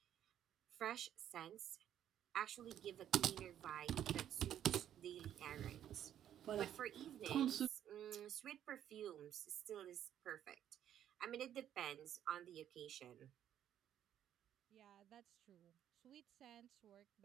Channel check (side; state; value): left; quieter; 10.6 dB